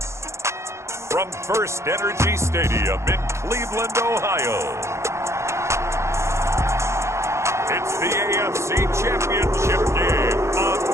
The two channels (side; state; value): left; late; 0.14 ms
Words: from First Energy Stadium in Cleveland, Ohio, it's the AFC Championship game on